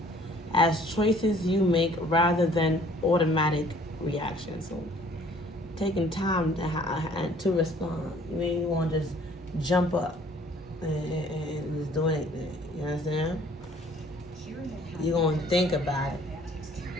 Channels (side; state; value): both; normal; correlation 0.56